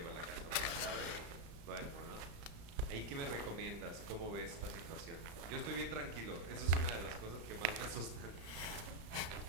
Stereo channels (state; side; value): late; left; 35 ms